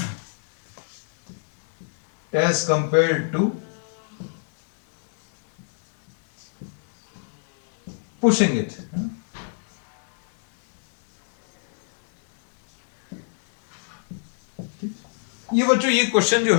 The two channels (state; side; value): silent; right; 63 dB below the other